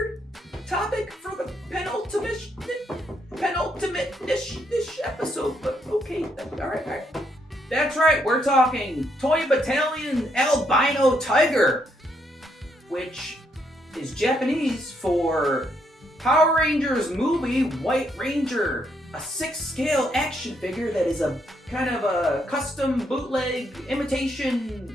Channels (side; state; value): both; normal; correlation 0.74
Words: topic for the penultimate dish episode, but okay, all right. That's right, we're talking Toy Battalion Albino Tiger, which is Japanese for Power Rangers movie White Ranger, a 6-scale action figure that is a kind of a custom bootleg